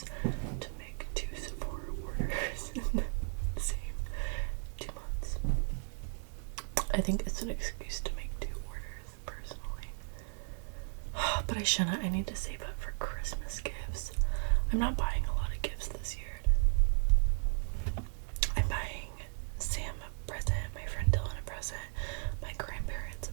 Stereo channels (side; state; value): left; silent; 54 dB below the other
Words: to make 2 Sephora orders in the same 2 months? I think it's an excuse to make 2 orders, personally. But I shouldn't. I need to save up for Christmas gifts. I'm not buying a lot of gifts this year. I'm buying Sam a present, my friend Dylan a present, my grandparents a